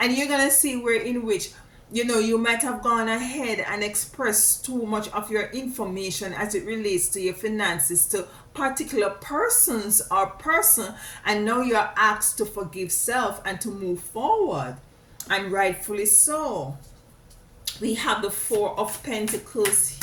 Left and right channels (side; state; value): both; identical; correlation 1.00